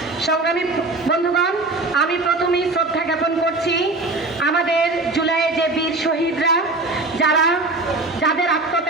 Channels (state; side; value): quieter; left; 3.1 dB